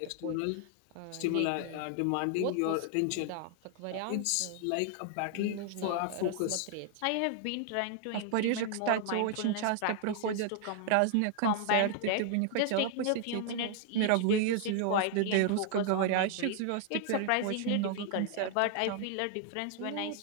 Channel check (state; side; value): different; both; correlation 0.00